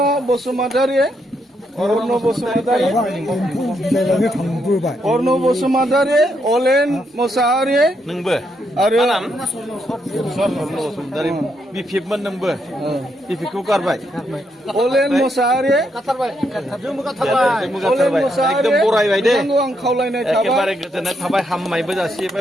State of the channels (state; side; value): normal; both; correlation 0.78